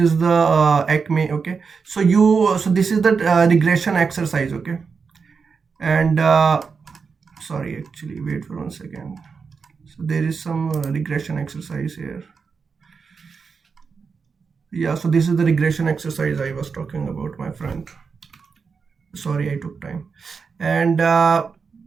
the Acme, okay. So this is the regression exercise, okay. And sorry, actually, wait for 1 second. So there is some regression exercise here. Yeah, so this is the regression exercise I was talking about, my friend. Sorry, I took time. And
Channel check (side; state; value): left; quieter; 5.4 dB